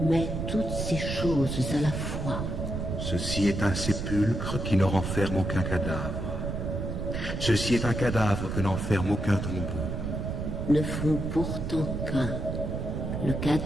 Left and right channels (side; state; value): right; noise; rumble, 3 dB below the sound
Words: mais toutes ces choses à la fois. Ceci est un sépulcre qui ne renferme aucun cadavre. Ceci est un cadavre que n'enferme aucun tombeau. Ne font pourtant qu'un, le